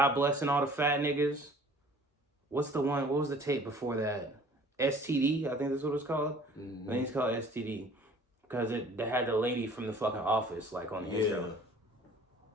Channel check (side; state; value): both; normal; correlation 0.50